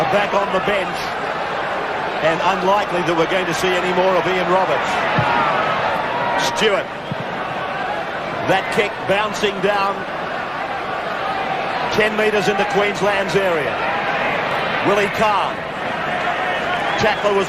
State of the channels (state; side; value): identical; both; correlation 1.00